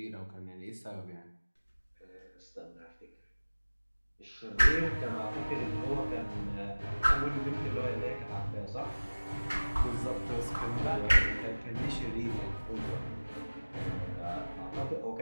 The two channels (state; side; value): inverted; both; correlation -1.00